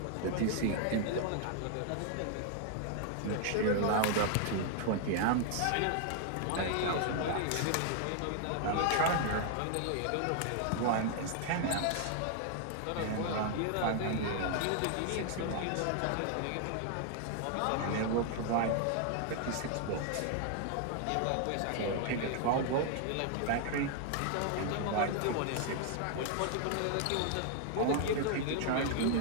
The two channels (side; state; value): both; different; correlation 0.00